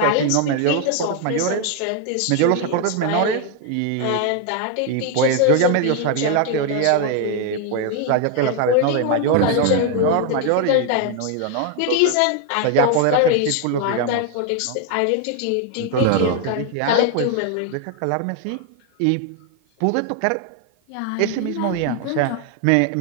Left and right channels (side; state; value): both; different; correlation 0.01